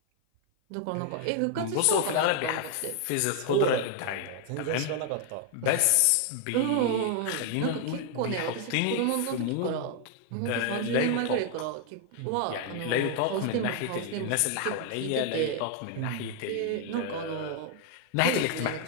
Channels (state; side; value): different; both; correlation 0.00